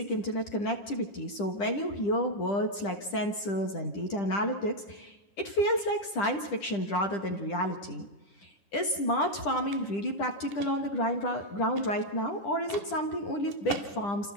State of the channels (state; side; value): late; right; 10 ms